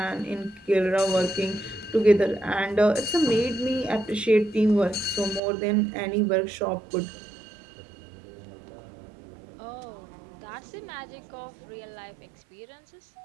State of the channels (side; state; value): left; drops out; at 5.4 s